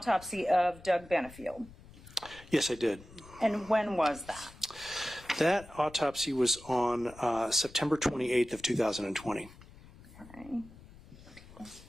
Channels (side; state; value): left; noise; rumble, 20 dB below the sound